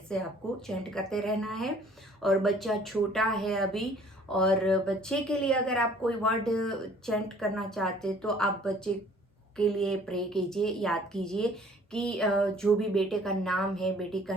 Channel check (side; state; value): both; normal; correlation 0.55